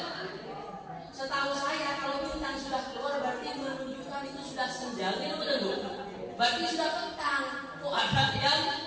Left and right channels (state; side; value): identical; both; correlation 1.00